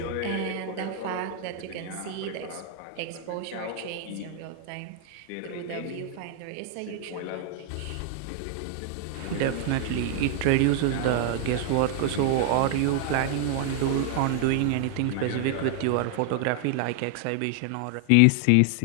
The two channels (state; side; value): different; both; correlation 0.00